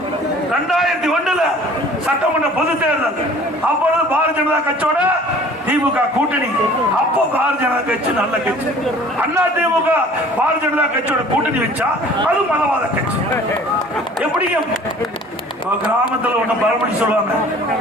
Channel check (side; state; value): both; normal; correlation 0.49